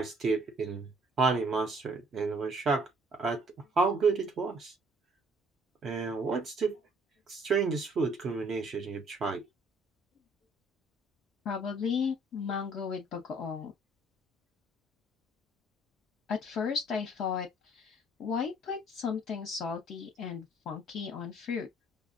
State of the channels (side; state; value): both; normal; correlation 0.60